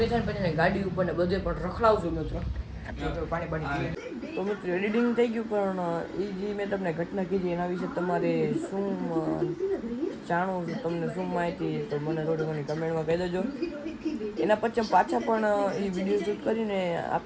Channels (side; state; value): both; identical; correlation 1.00